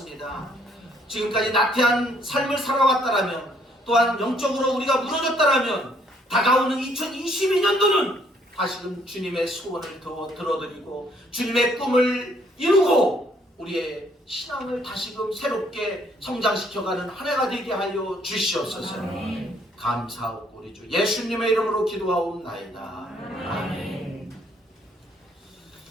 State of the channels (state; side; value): normal; both; correlation 0.66